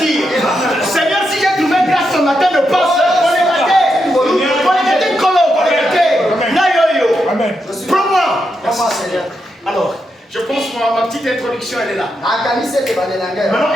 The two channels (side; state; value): both; normal; correlation 0.84